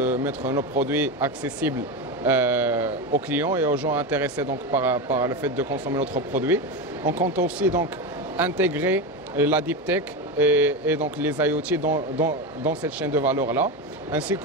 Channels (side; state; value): both; normal; correlation 0.18